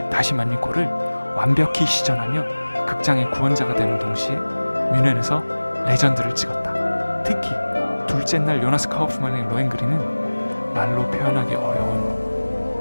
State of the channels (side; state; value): both; inverted; correlation -1.00